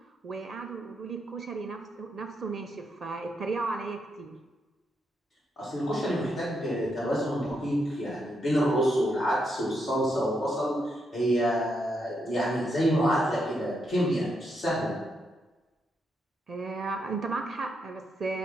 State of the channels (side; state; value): both; normal; correlation 0.80